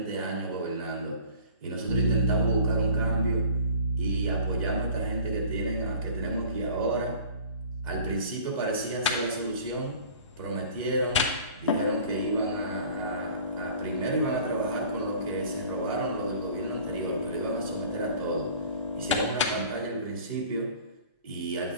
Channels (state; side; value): inverted; both; correlation -0.46